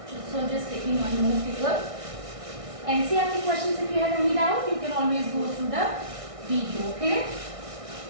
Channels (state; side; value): late; left; 1.6 ms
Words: So just taking one more figure. NCERT questions, if you have any doubt, you can always go through the video. Okay.